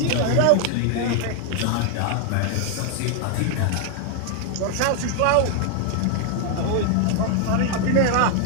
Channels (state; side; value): different; both; correlation 0.00